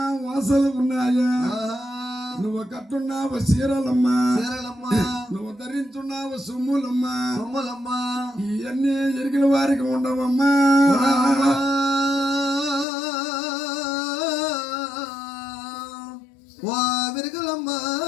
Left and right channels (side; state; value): right; drops out; at 12.9 s